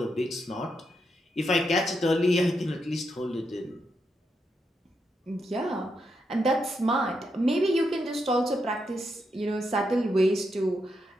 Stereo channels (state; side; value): normal; both; correlation 0.82